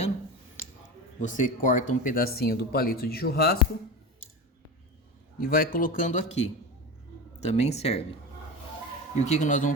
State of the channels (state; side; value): normal; both; correlation 0.25